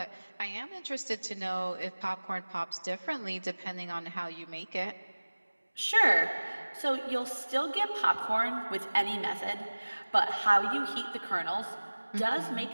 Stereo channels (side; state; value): both; inverted; correlation -1.00